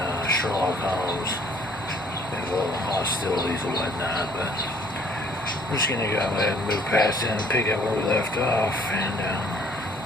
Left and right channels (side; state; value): both; normal; correlation 0.59